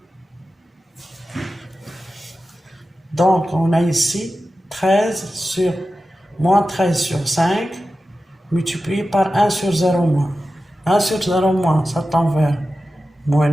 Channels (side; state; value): both; normal; correlation 0.93